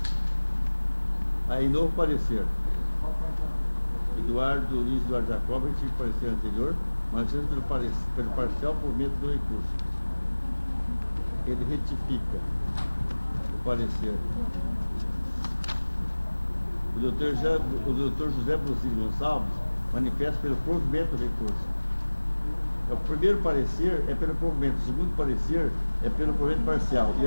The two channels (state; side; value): inverted; both; correlation -1.00